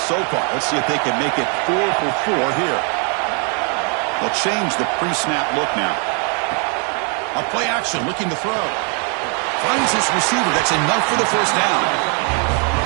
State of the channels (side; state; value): left; quieter; 38.3 dB